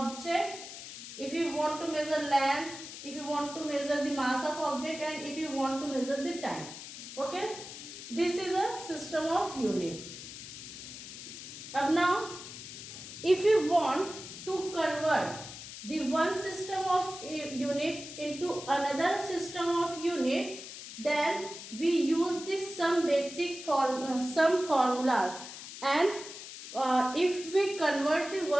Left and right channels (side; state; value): left; noise; hiss, 12 dB below the sound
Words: If you want to measure length, if you want to measure the mass of object, and if you want to measure the time. Okay, this is a system of unit. Now, if you want to convert the one system of unit into another system of unit, then we use this some basic some formulas, and if we convert the